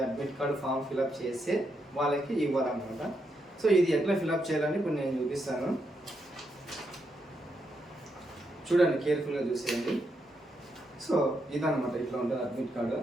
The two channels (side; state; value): both; normal; correlation 0.81